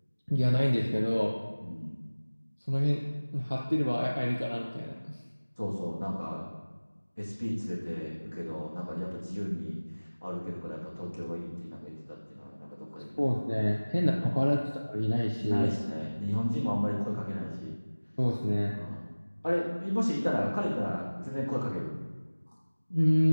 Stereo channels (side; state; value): both; inverted; correlation -1.00